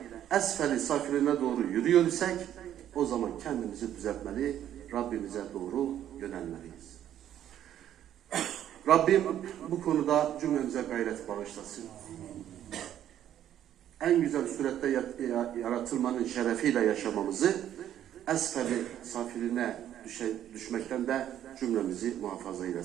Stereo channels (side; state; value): left; quieter; 11.0 dB